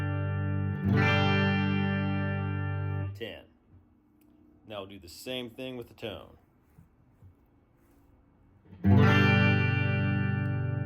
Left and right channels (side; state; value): both; identical; correlation 1.00